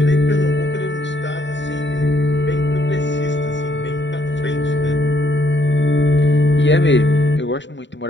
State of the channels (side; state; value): right; late; 0.53 ms